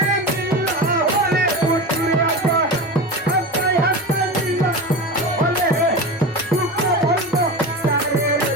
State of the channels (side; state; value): both; normal; correlation 0.26